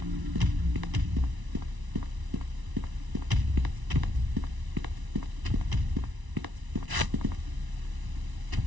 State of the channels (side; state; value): left; late; 1.0 ms